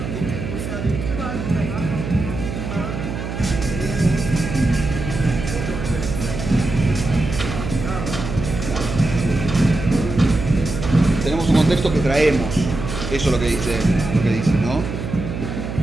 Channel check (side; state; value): right; noise; hum, 6 dB below the sound